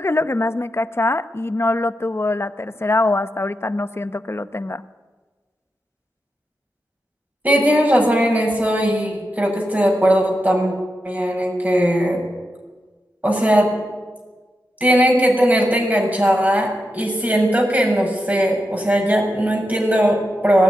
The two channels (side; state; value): both; normal; correlation 0.87